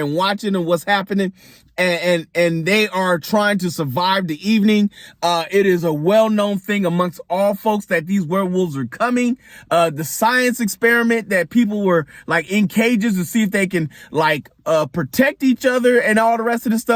watching and what's happening. And they are trying to survive the evening. It is a well-known thing amongst all folks that these werewolves are coming. The science experiment that people were like in cages to see if they can like protect each other and all the rest of the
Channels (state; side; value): identical; both; correlation 1.00